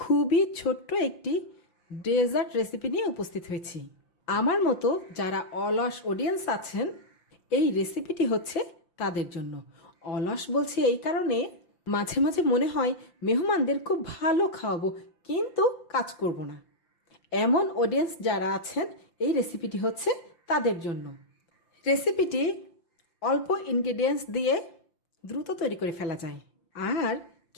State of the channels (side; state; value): right; late; 5.8 ms